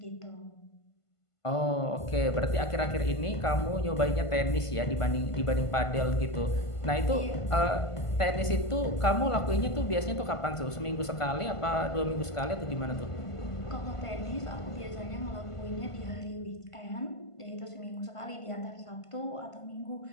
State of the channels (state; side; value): late; right; 1.5 ms